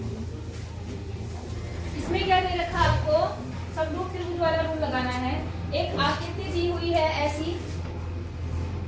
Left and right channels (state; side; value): identical; both; correlation 1.00